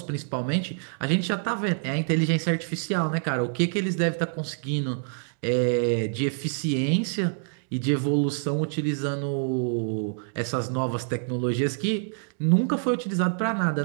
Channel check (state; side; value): silent; left; digital silence